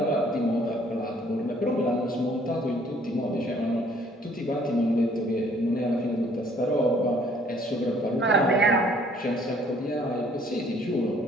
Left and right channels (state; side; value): normal; both; correlation 0.60